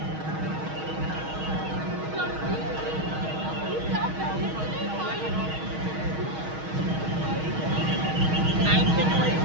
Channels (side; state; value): left; late; 6.3 ms